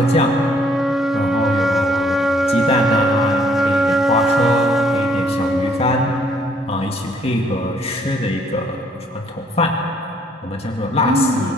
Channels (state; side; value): normal; both; correlation 0.65